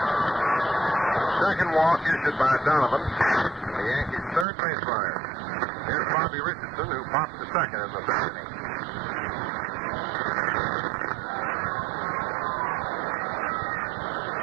Second walk issued by Donovan, the Yankees' third base runner. Here's Bobby Richardson, who popped to second in the 3rd inning.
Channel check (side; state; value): left; drops out; at 4.5 s